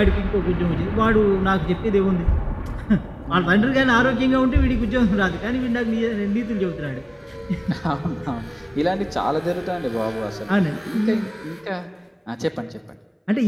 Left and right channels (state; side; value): identical; both; correlation 1.00